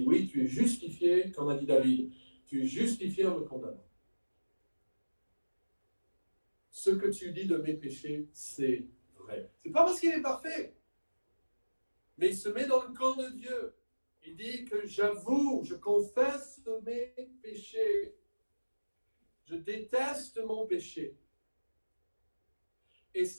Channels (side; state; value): both; inverted; correlation -1.00